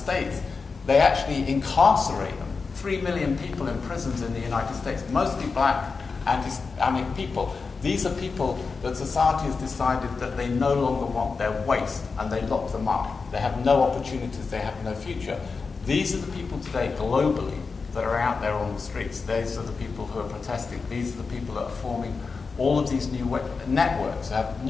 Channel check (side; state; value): right; quieter; 4.7 dB